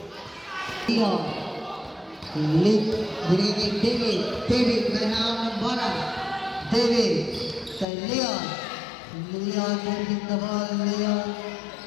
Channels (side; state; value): right; drops out; at 7.9 s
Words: Leon. Lead, binigay kay David. David, may hawak ng bola. David, kay Leon. Leon, dribbling the ball.